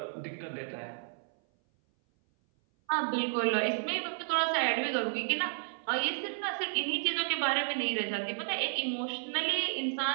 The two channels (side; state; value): left; silent; 56 dB below the other